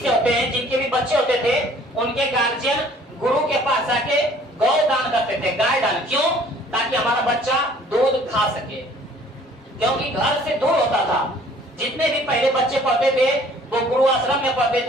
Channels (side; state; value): both; normal; correlation 0.55